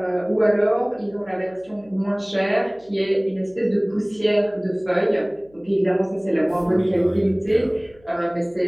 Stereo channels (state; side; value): noise; left; hum, 29 dB below the sound